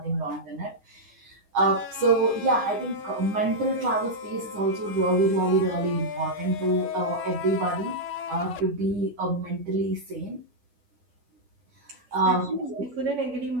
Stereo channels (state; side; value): late; left; 9.8 ms